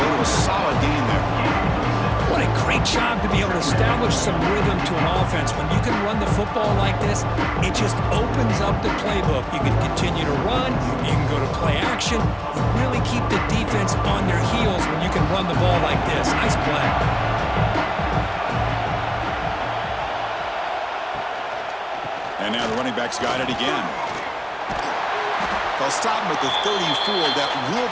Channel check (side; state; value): both; identical; correlation 1.00